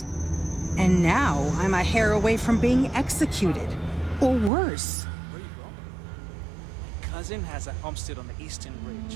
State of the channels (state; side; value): drops out; left; at 4.5 s